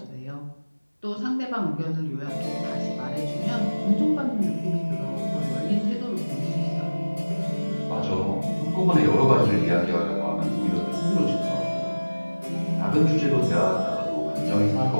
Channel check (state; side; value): inverted; both; correlation -1.00